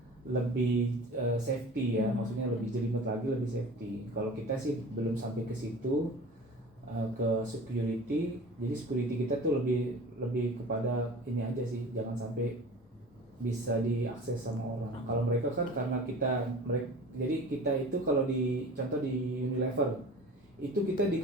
lebih safety ya, maksudnya lebih jelimet lagi, lebih safety. Kalau kita sih belum sampai ke situ. Ke security, jadi security kita tuh lebih kepada ini aja sih, jangan sampai bisa diakses sama orang. Kalau mereka kan karena jadi kita itu kalau contoh di Unilever itu kita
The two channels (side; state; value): both; normal; correlation 0.40